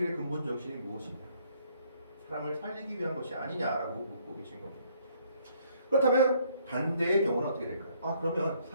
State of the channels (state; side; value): inverted; both; correlation -0.65